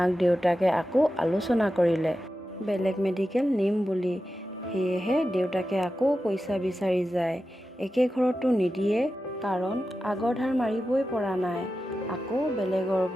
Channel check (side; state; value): both; normal; correlation 0.92